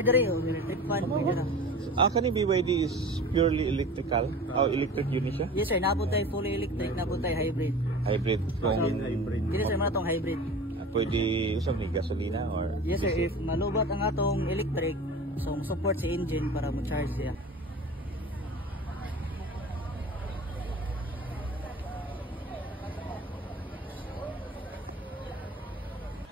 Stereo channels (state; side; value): normal; both; correlation 0.37